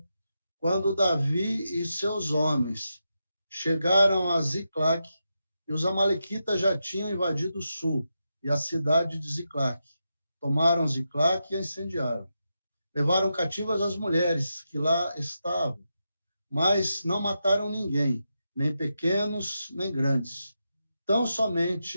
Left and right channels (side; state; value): both; inverted; correlation -0.87